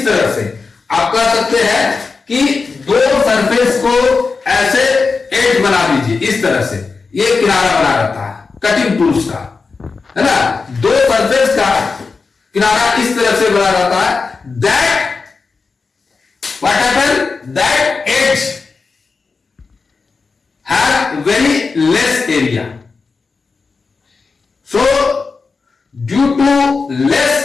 तरह से आप कह सकते हैं कि दो सरफेस को ऐसे एज बना दीजिए, इस तरह से ये किनारा बना रहता है कटिंग टूल्स का, है ना. दो सरफेस का किनारा इस तरह से बना रहता है. That what happen? That edge has very less area. So due to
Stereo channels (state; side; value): quieter; right; 4.5 dB